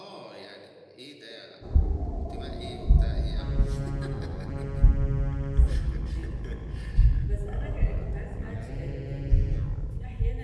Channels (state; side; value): identical; both; correlation 1.00